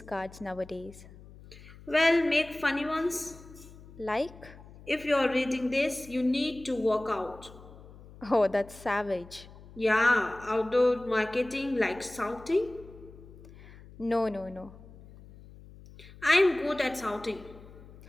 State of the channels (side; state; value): left; noise; hum, 19 dB below the sound